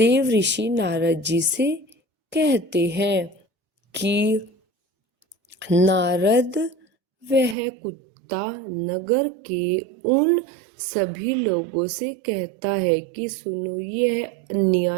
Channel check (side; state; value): left; drops out; at 7.6 s